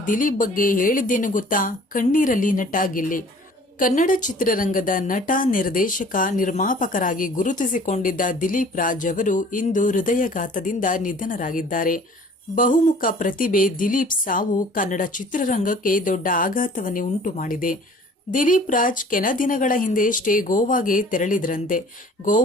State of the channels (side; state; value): both; normal; correlation 0.50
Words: ದಿಲೀಪ್ ಬಗ್ಗೆ ಹೇಳಿದ್ದೇನು ಗೊತ್ತಾ? ಕಣ್ಣೀರಲ್ಲಿ ನಟ ಗಿಲ್ಲಿ. ಕನ್ನಡ ಚಿತ್ರರಂಗದ ನಟ, ನಿರ್ದೇಶಕ, ನಿರ್ಮಾಪಕರಾಗಿ ಗುರುತಿಸಿಕೊಂಡಿದ್ದ ದಿಲೀಪ್ ರಾಜ್ ಅವರು ಇಂದು ಹೃದಯಘಾತದಿಂದ ನಿಧನರಾಗಿದ್ದಾರೆ. ಬಹುಮುಖ ಪ್ರತಿಭೆ ದಿಲೀಪ್ ಸಾವು ಕನ್ನಡ ಚಿತ್ರರಂಗಕ್ಕೆ ದೊಡ್ಡ ಆಘಾತವನ್ನೇ ಉಂಟು ಮಾಡಿದೆ. ದಿಲೀಪ್ ರಾಜ್ ಕೆಲ ದಿನಗಳ ಹಿಂದೆಯಷ್ಟೇ ಗೋವಾಗೆ ತೆರಳಿದ್ರಂತೆ.